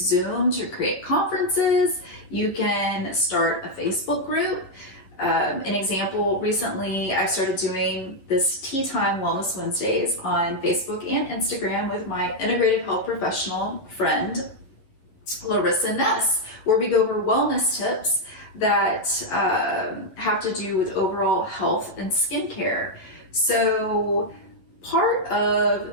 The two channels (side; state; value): right; late; 11 ms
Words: to create conferences. You can start a Facebook group. An example, recently I started doing this Tea Time Wellness Wednesdays on Facebook and Instagram with my integrative health professional friend, Larissa Ness, where we go over wellness tips that have to do with overall health and skincare. So part